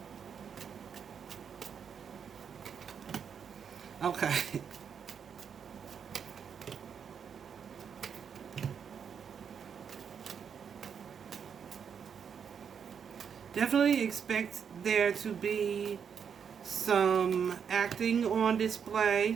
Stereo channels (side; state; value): left; quieter; 7.2 dB